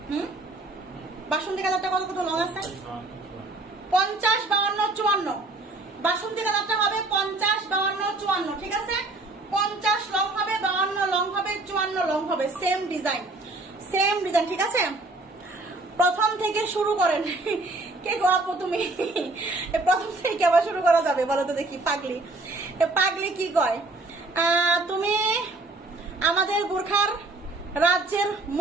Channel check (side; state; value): left; quieter; 3.0 dB